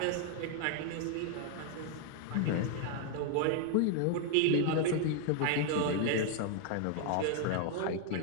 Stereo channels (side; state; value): both; different; correlation 0.00